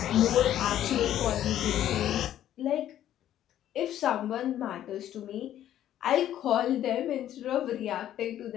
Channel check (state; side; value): quieter; right; 11.7 dB